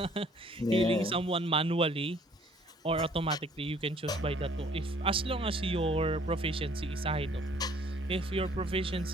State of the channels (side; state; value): both; normal; correlation 0.58